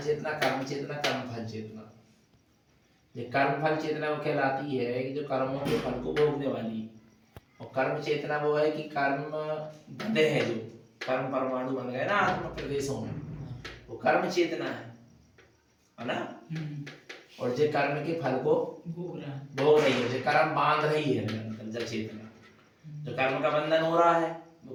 कर्म चेतना, कर्म फल चेतना। ये कर्म फल चेतना वो कहलाती है कि जो कर्मों के फल को भोगने वाली, और कर्म चेतना वो है कि कर्म बंधे हैं, जो कर्म परमाणु बन गए ना आत्मा प्रदेशों में, वो कर्म चेतना है ना। और जो कर्म के फल को भोग रही है, जो कर्म बांध रही है निरंतर, जो चेतना, जो कर्म का बंधन हो रहा है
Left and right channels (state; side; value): identical; both; correlation 1.00